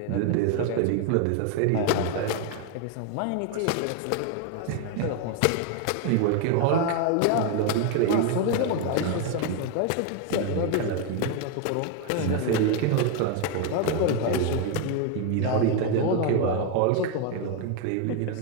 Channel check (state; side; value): different; both; correlation 0.01